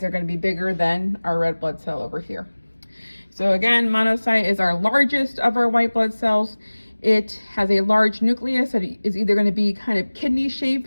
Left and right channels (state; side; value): inverted; both; correlation -1.00